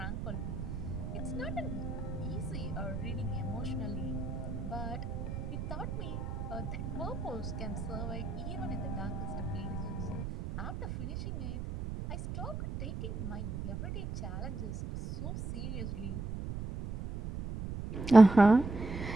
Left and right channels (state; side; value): noise; right; rumble, 5 dB below the sound